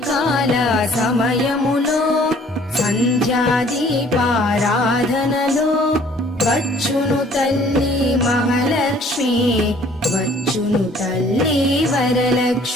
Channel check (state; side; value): normal; both; correlation 0.56